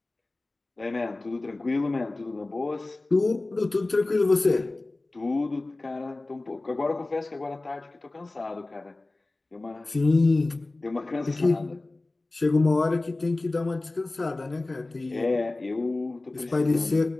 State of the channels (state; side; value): quieter; right; 3.0 dB